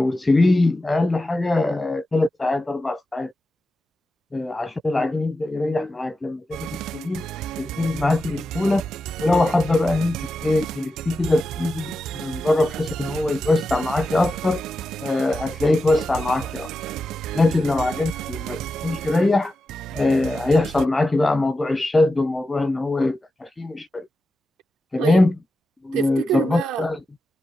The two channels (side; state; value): both; normal; correlation 0.90